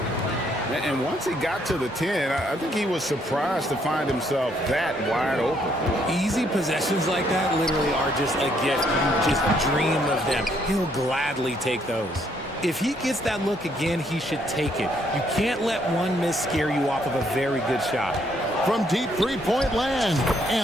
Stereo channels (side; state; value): both; normal; correlation 0.70